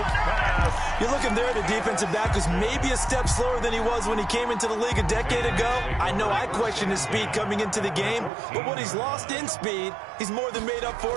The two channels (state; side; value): drops out; left; at 8.3 s